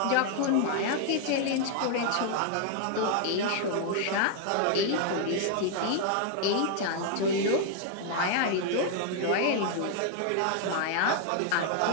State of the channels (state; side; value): different; both; correlation 0.00